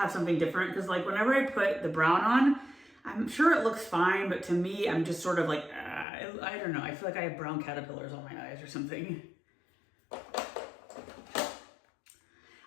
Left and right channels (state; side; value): drops out; right; at 6.1 s